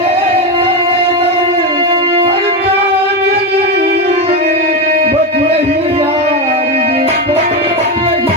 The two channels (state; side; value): normal; both; correlation 0.13